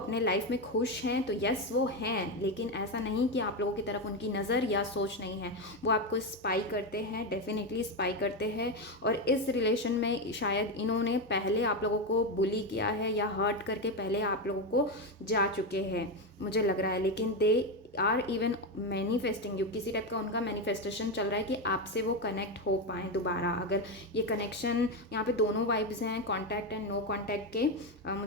लाइफ में खुश हैं, तो यस वो हैं, लेकिन ऐसा नहीं कि आप लोगों की तरफ उनकी नज़र या सोच नहीं है। वो आपको स्पाई करते हैं, डेफिनेटली स्पाई करते हैं। और इस रिलेशन में शायद इन्होंने पहले आप लोगों को बुली किया है या हर्ट करके पहले आप लोगों को जा चुके हैं, मुझे लग रहा है। लेकिन they are even manifesting you, किसी टाइप का उनका मैनिफेस्टेशन चल रहा है कि आपसे वो कनेक्ट हो पाएँ दोबारा। अगर ये कनेक्शन, यहाँ पे दोनों वाइब्स हैं, कॉन्टैक्ट एंड नो कॉन्टैक्ट के।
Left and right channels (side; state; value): both; normal; correlation 0.11